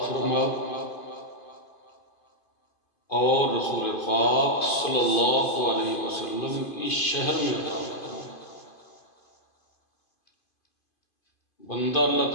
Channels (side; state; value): right; late; 2.5 ms